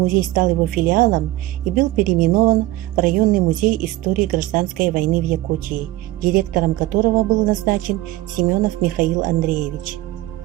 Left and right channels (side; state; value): left; quieter; 17.2 dB